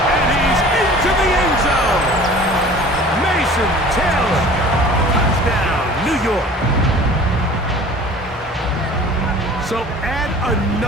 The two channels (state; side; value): normal; both; correlation 0.45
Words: he's into the end zone. Mason Taylor. Touchdown, New York. So add